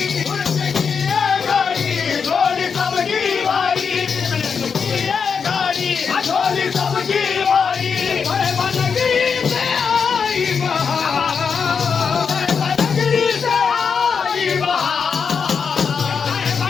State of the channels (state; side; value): quieter; right; 6.1 dB